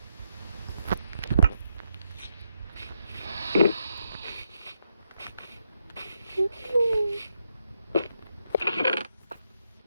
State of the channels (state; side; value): inverted; both; correlation -0.81